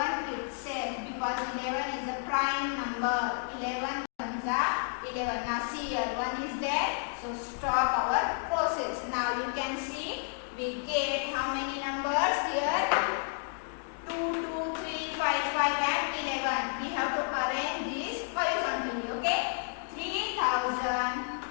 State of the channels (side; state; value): right; silent; 57 dB below the other